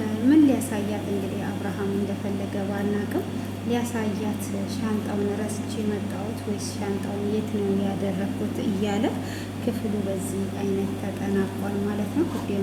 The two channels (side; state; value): both; identical; correlation 1.00